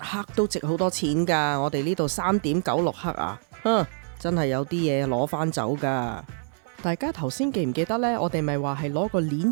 都值好多錢噶，我哋呢度3.96克啊，真係有啲嘢攞翻走噶。大家頭先記唔記得呢？我哋咪話係攞個鏈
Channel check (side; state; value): left; silent; 59 dB below the other